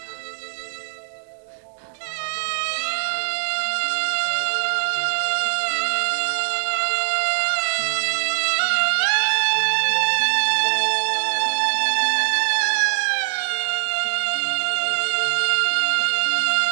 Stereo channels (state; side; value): silent; left; digital silence